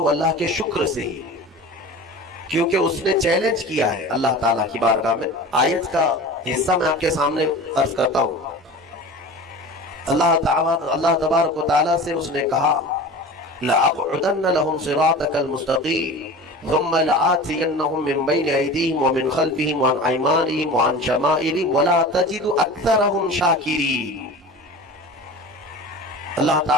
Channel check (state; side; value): normal; both; correlation 0.35